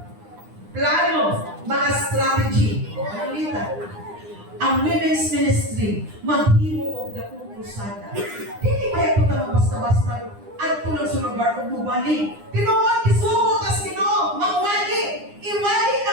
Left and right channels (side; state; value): left; late; 9.8 ms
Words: Plano, mga strategy. Ano nita? Ang women's ministry, maghimo og dakong krusada. Hindi ba ito na basta-basta at tulong sa lugar kung mubali. Tinuod, isugo kas Ginoo, mawali. Iwali na